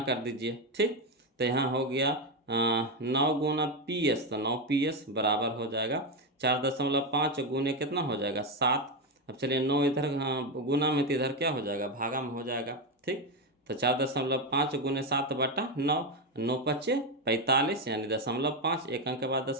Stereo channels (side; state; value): both; normal; correlation 0.10